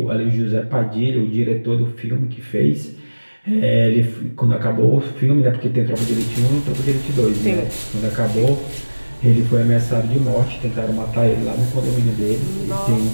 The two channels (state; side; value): inverted; both; correlation -1.00